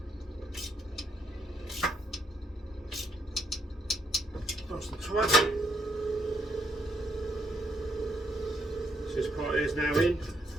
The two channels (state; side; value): normal; both; correlation 0.74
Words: Nice and tight. So this part is now in.